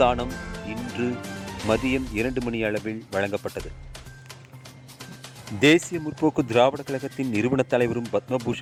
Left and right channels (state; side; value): identical; both; correlation 1.00